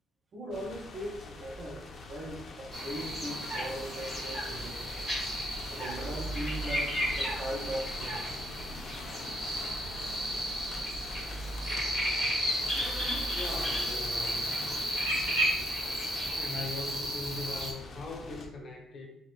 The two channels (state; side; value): normal; both; correlation 0.73